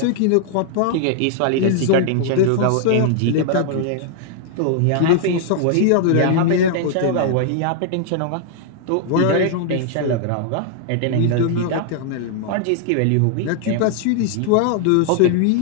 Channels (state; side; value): different; both; correlation 0.00